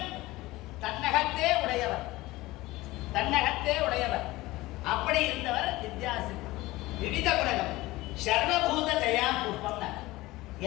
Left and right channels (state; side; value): quieter; right; 19.2 dB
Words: தன்னகத்தே உடையவர், தன்னகத்தே உடையவர். அப்படி இருந்தவர் வித்யாசில்பம். விவித குணகம் சர்வபூத தயா புஷ்பம்,